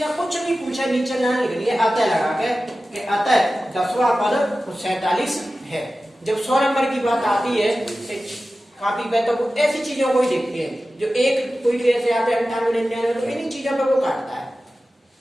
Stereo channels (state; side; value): normal; both; correlation 0.95